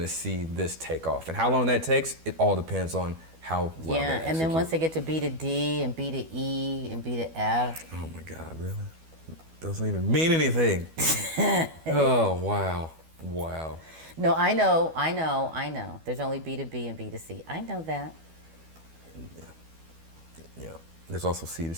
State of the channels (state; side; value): late; left; 12 ms